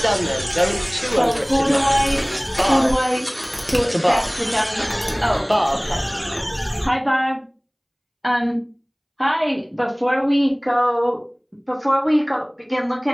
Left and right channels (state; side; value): identical; both; correlation 1.00